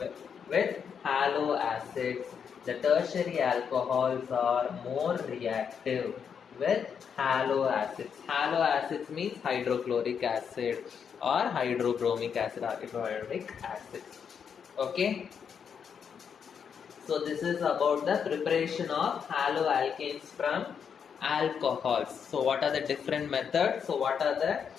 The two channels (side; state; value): right; quieter; 7.1 dB